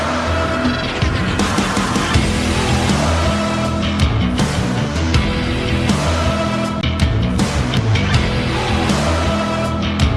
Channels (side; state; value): both; identical; correlation 1.00